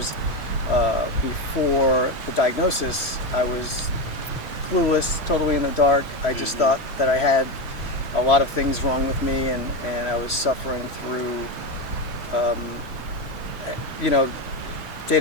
before the diagnosis, I was clueless, totally in the dark. I just thought that I had a lot of things wrong with me, and I was suffering through, day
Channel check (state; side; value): late; right; 3.1 ms